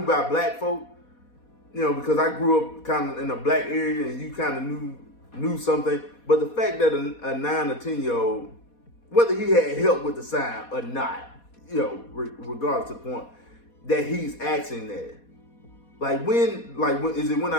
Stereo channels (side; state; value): right; late; 4.2 ms